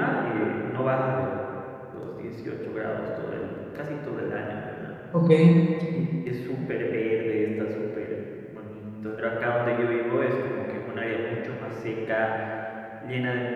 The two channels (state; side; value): identical; both; correlation 1.00